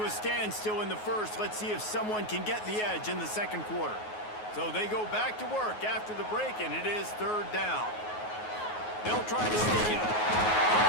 a standstill in the 1st. Let's see if someone can get the edge in the 2nd quarter. So they go back to work after the break, and it is 3rd down. They'll try to sneak it.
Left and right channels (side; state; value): right; late; 9.4 ms